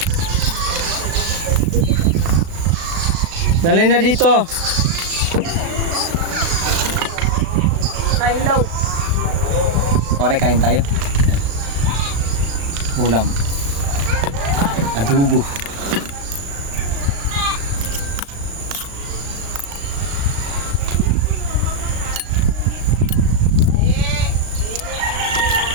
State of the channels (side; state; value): left; late; 36 ms